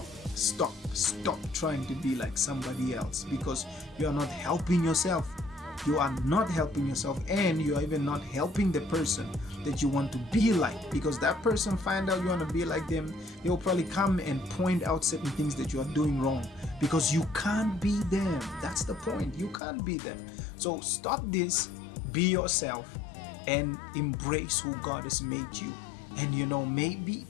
trying to be like somebody else, because you are not helping yourself. You are not helping yourself, and you are even not helping the person that you want to be like, because that person find out you want to be like them, they will probably come and point out certain things that you are doing wrong, because you can't be them. That's the point. You can't be them. So stop this, be yourself, and embrace who God has made you. And maybe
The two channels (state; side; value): drops out; right; at 19.6 s